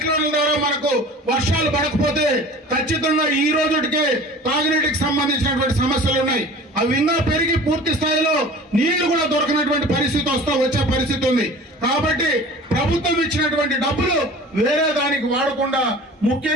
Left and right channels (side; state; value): both; normal; correlation 0.42